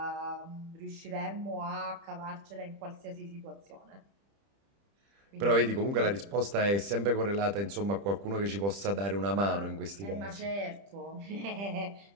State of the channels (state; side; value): late; left; 30 ms